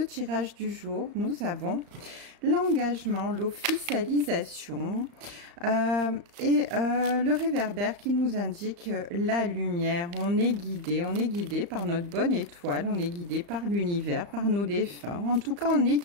du jour. Nous avons l'engagement, l'officialisation et le réverbère qui nous indique la lumière. On est guidé par notre bonne étoile, on est guidé par l'univers, par nos défunts. En tout cas, on est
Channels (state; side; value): late; left; 35 ms